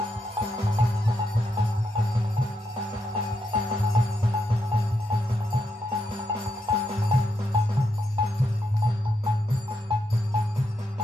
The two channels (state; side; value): normal; both; correlation 0.82